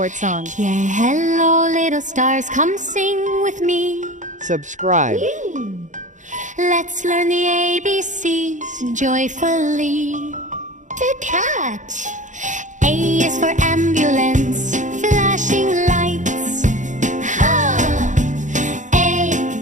song. Yeah, hello little stars, come sing with me. Subscribe. Let's learn the ABCs joyfully. The cat. A is for ambulance, flashing lights. Ha! A,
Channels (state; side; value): late; left; 0.36 ms